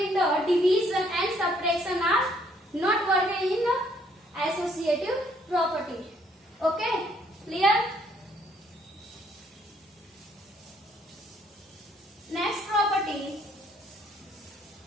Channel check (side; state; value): both; normal; correlation 0.66